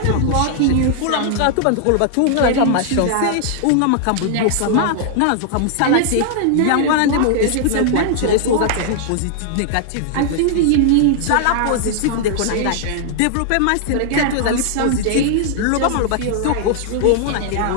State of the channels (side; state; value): both; different; correlation -0.01